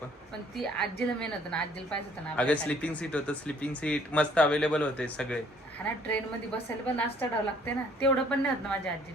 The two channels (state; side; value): normal; both; correlation 0.60